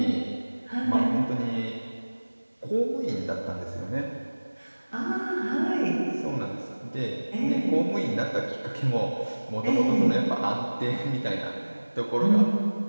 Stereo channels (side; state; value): both; inverted; correlation -1.00